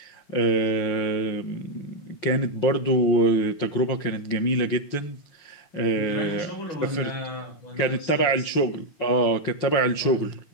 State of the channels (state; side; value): late; right; 5.7 ms